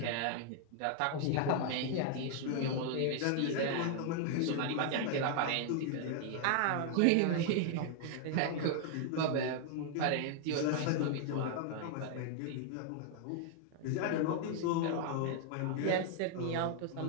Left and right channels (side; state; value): both; different; correlation 0.00